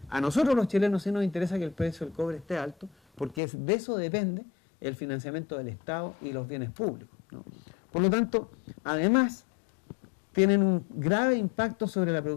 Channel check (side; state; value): right; drops out; at 3.4 s